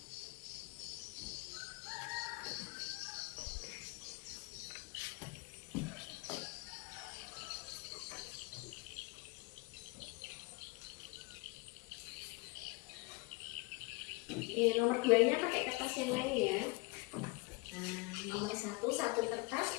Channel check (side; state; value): right; quieter; 26.2 dB